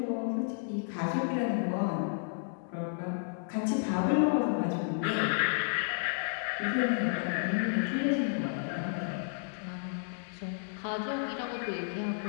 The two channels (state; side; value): silent; right; 56 dB below the other